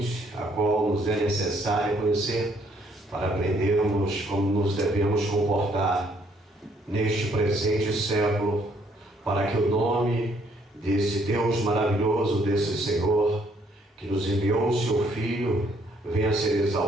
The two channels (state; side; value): normal; both; correlation 0.67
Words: a qual nos é necessário conhecer, para aprendermos como nos devemos comportar neste presente século, para que o nome desse Deus maravilhoso, desse Senhor, que nos enviou o seu Filho, venha a ser